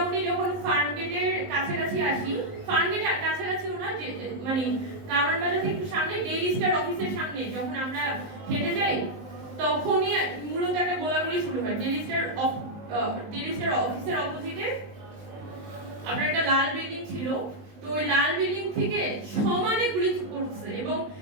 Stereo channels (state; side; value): late; left; 19 ms